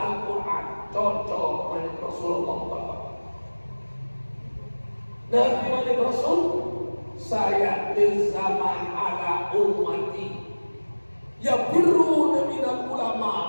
Cocok dengan Rasulullah Bapak. Nabi Muhammad Rasul, saya di zaman ala ummati yafirruna minal ulama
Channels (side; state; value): both; inverted; correlation -1.00